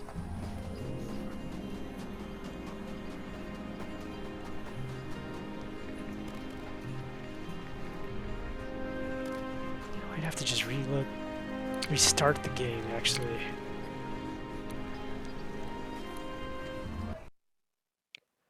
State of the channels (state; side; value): identical; both; correlation 1.00